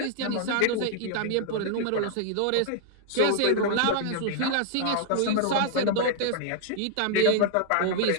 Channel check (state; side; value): different; both; correlation 0.00